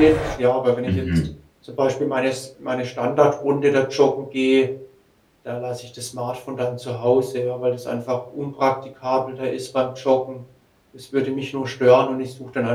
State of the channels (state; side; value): identical; both; correlation 1.00